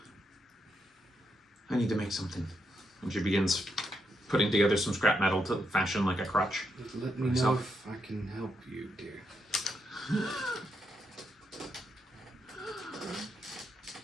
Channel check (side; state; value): both; normal; correlation 0.81